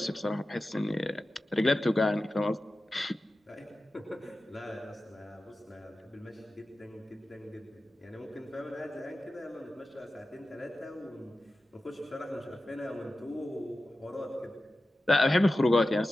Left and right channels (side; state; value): both; normal; correlation 0.94